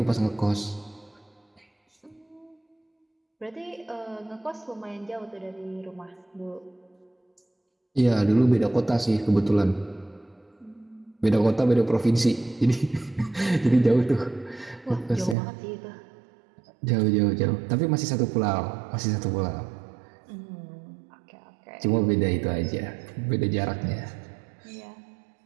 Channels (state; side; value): drops out; left; at 15.4 s